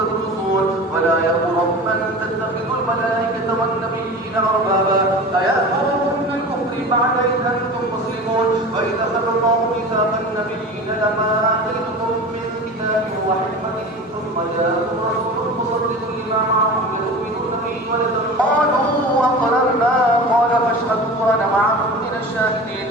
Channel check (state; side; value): normal; both; correlation 0.34